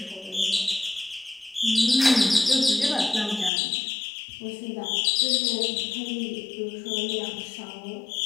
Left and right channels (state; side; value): drops out; right; at 3.5 s